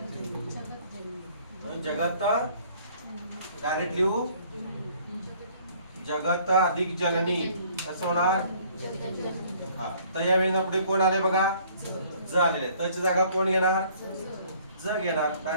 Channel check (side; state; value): both; inverted; correlation -0.57